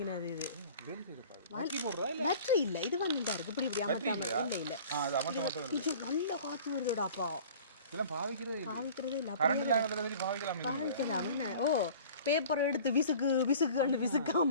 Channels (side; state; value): both; inverted; correlation -0.45